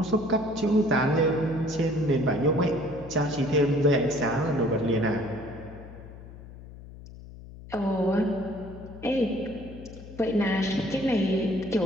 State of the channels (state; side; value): noise; left; hum, 16 dB below the sound